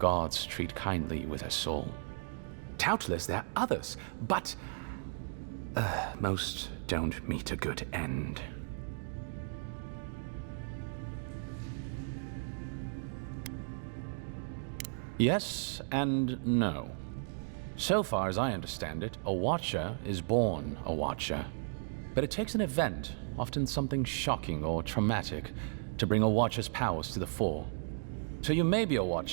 treat kindly with her soul. Doubtless there are others, but most don't meet a good end. Yes and no. So far as I understand it, a watcher is born a watcher. But it takes an event, often something shocking or traumatic, to bring a watcher's powers to the fore. So you may be a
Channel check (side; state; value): left; silent; digital silence